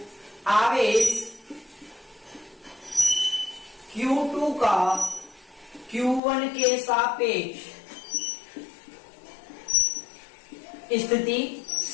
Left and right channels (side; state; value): right; drops out; at 6.2 s